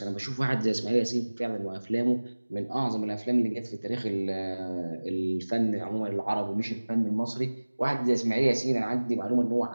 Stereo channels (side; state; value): both; inverted; correlation -1.00